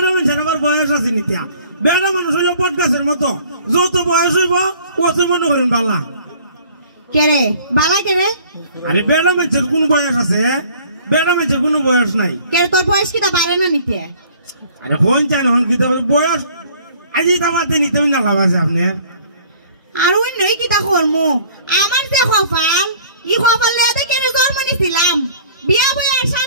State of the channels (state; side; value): inverted; both; correlation -0.53